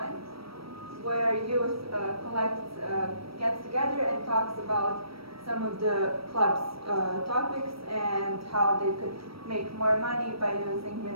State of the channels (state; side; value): late; left; 0.75 ms